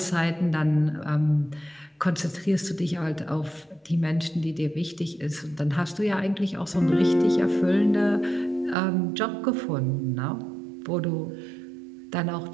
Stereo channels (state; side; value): drops out; left; at 8.8 s